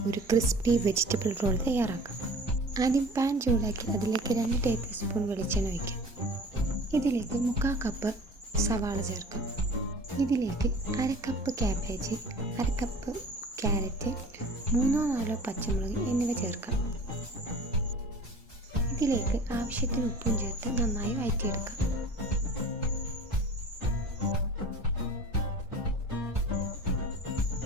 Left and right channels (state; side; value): normal; both; correlation 0.43